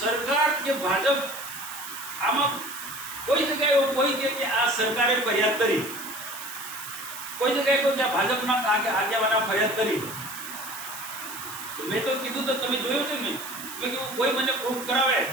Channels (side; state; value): right; noise; hiss, 11 dB below the sound